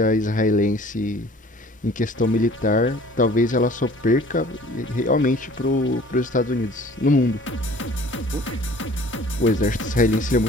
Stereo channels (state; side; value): normal; both; correlation 0.50